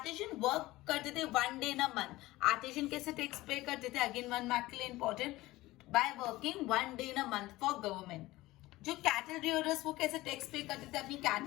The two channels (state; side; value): quieter; right; 18.4 dB